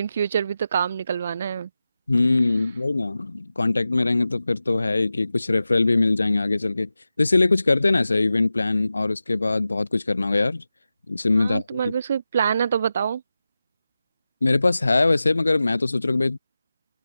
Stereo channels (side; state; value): both; inverted; correlation -0.94